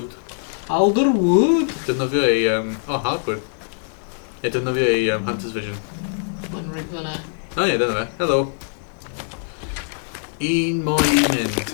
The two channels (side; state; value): right; silent; digital silence